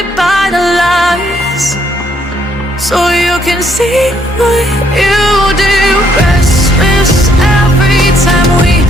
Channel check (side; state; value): both; normal; correlation 0.70